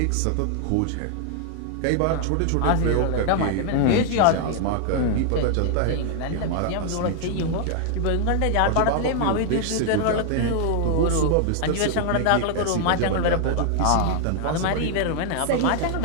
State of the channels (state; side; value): different; both; correlation 0.00